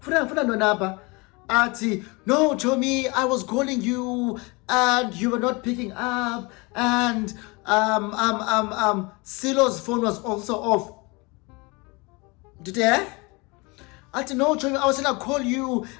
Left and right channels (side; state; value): right; quieter; 26.9 dB